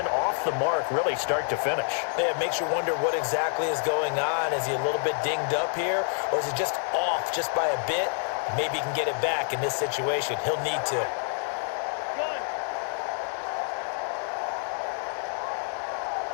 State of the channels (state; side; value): silent; right; 60 dB below the other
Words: off the mark really start to finish. Yeah, it makes you wonder what exactly is going on. Is he a little bit dinged up here, or is he just off just by a bit? Maybe he can get it back in this situation. He'll need to.